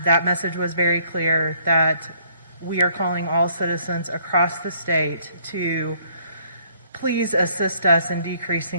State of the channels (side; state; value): both; inverted; correlation -0.64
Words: message was very clear that we are calling all citizens across the state to please assist us in